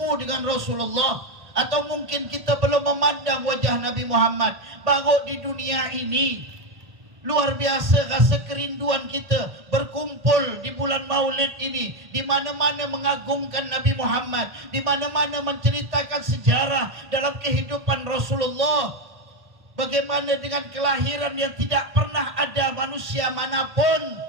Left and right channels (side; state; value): left; late; 1.8 ms